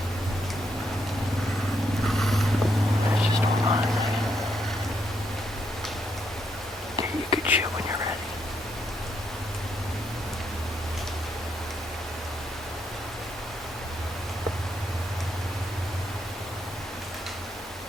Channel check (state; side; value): normal; both; correlation 0.77